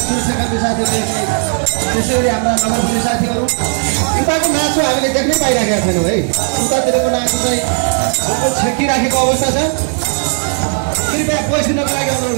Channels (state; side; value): silent; left; 62 dB below the other